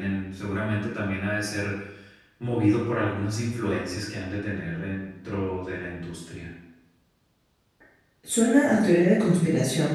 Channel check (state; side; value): identical; both; correlation 1.00